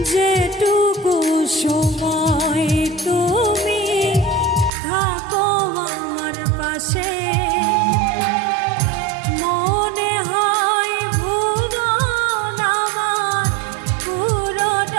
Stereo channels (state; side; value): drops out; left; at 4.7 s